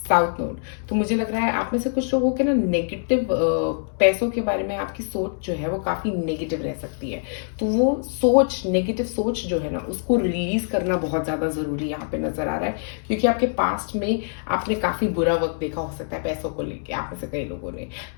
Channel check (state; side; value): silent; right; 63 dB below the other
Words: south node. तो मुझे लग रहा है आप में से कुछ लोगों के ना नेगेटिव पैसों के बारे में आपकी सोच जो है वो काफी नेगेटिव रह सकती है। तो वो सोच, नेगेटिव सोच जो है ना उसको रिलीज करना बहुत ज्यादा जरूरी यहाँ पे नजर आ रहा है। क्योंकि आपके पास्ट में आपने काफी बुरा वक्त देखा हो सकता है पैसों को लेके, आप में से कई लोगों ने,